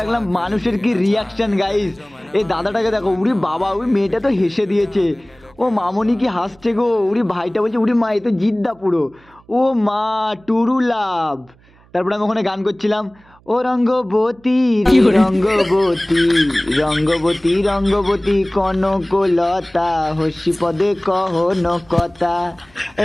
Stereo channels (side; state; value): right; noise; hum, 29 dB below the sound